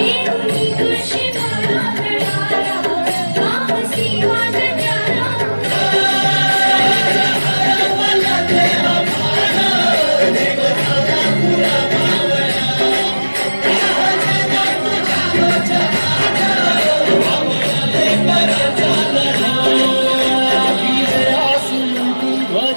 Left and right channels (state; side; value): inverted; both; correlation -1.00